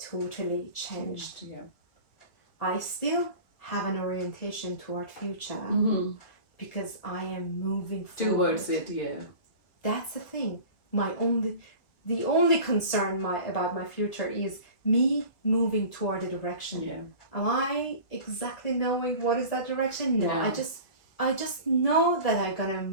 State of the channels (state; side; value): late; right; 1.9 ms